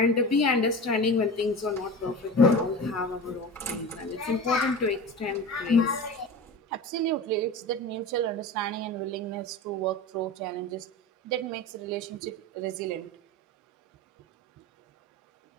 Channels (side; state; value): both; normal; correlation 0.30